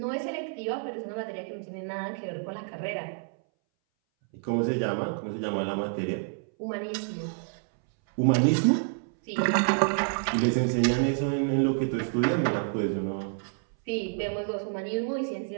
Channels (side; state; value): left; silent; 59 dB below the other